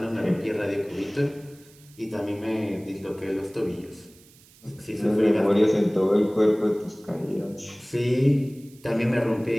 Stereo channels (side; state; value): right; noise; hiss, 26 dB below the sound